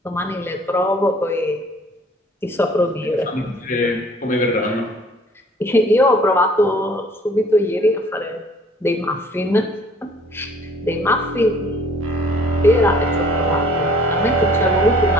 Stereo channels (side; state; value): both; normal; correlation 0.55